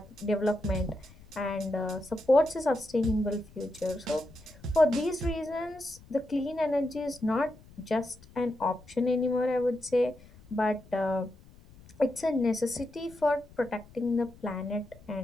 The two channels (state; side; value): noise; left; rumble, 23 dB below the sound